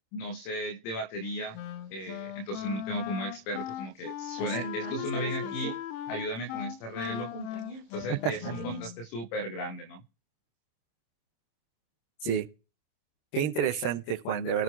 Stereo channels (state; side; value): late; right; 26 ms